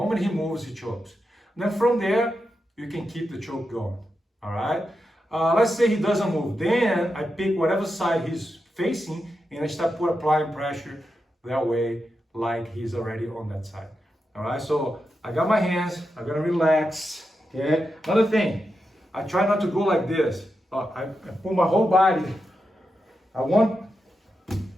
he moves, he chokes. Then from there, you can keep the choke going. All right. Let's say he doesn't move. Then I pick whatever side he's facing and I start applying pressure that way, like he's already on that side. All right. So I got my hands. I'm gonna relax. Okay. Another thing, I try not to go like this. I put my whole body. I want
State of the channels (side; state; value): both; normal; correlation 0.87